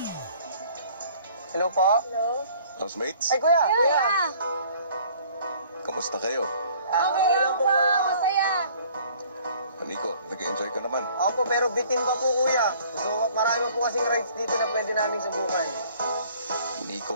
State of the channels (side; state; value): both; inverted; correlation -0.55